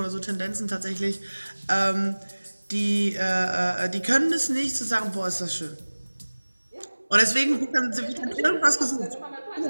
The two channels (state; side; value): inverted; both; correlation -1.00